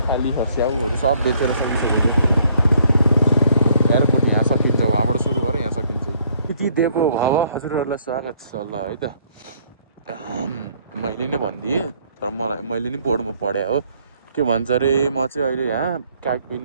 खाली छ। स्याउहरू सब बेचेर सकिसकेको थियो। एयरपोर्ट यहाँ सकिन्छ, वहाँबाट सुरु गरेर यहाँ सकिन्छ। यति दिएको भाव हजुरहरूलाई स्वागत छ ल है त। मैले नै भनिदिएँ तर मैले नि बोर्डमा पढेँ हो। के भन्छ अरे म चाहिँ अहिले यहाँ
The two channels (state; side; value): inverted; both; correlation -0.65